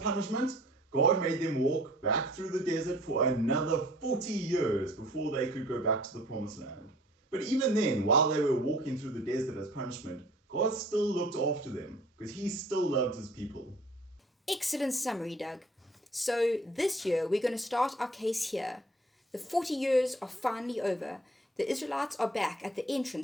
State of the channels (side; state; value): both; normal; correlation 0.52